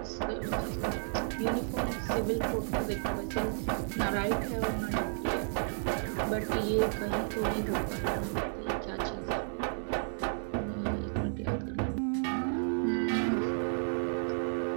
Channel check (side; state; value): left; silent; digital silence